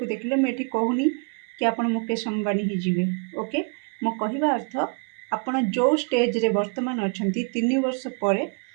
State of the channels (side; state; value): left; quieter; 39.1 dB